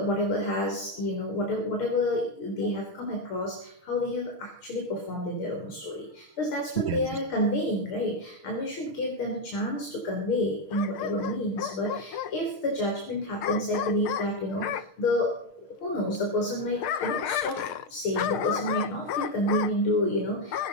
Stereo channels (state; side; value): late; right; 6.4 ms